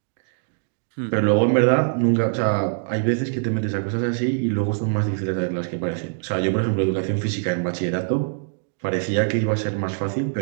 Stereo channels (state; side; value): silent; left; digital silence